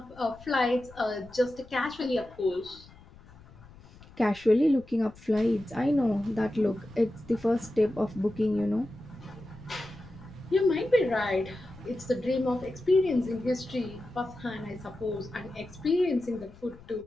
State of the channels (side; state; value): left; noise; rumble, 22 dB below the sound